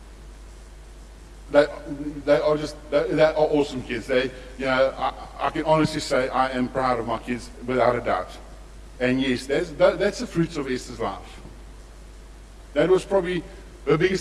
They are awesome kids. I can honestly say I am proud of my kids without a doubt. And yes, that's the fruits of Esther's life. That was probably her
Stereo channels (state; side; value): identical; both; correlation 1.00